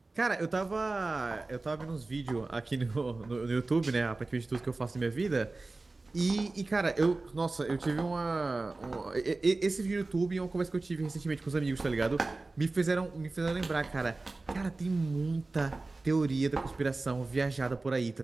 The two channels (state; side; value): quieter; left; 3.3 dB